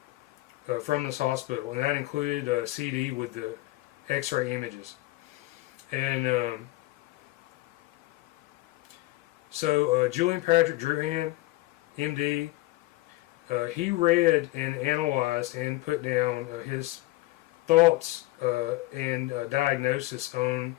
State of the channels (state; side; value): quieter; right; 19.0 dB